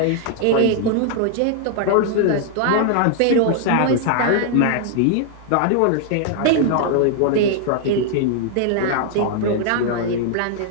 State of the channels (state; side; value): different; both; correlation 0.00